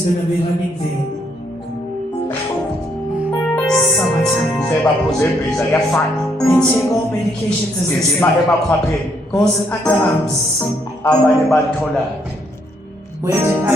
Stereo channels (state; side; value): normal; both; correlation 0.72